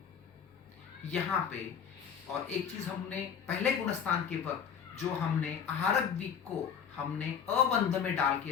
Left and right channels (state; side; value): quieter; right; 7.6 dB